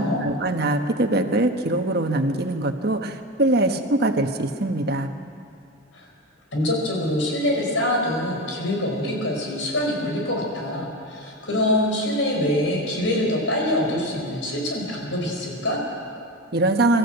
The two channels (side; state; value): both; normal; correlation 0.23